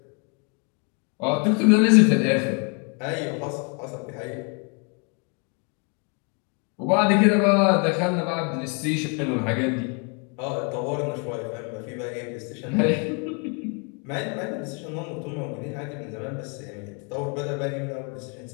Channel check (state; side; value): quieter; right; 36.2 dB